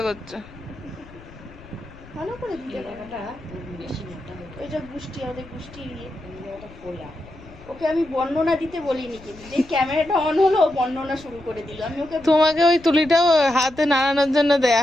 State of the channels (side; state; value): left; noise; rumble, 21 dB below the sound